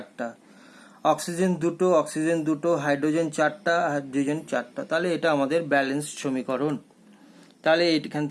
অক্সিজেন দুটো, হাইড্রোজেন 4টা, হাইড্রোজেন 4টা। তাহলে এটা আমাদের ব্যালেন্স সমীকরণ। তাহলে এখান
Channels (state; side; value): identical; both; correlation 1.00